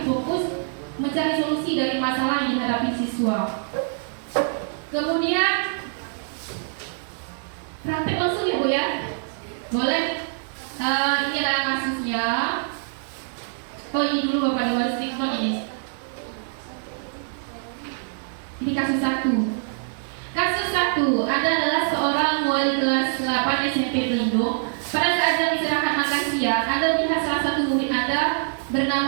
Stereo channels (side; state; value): left; silent; digital silence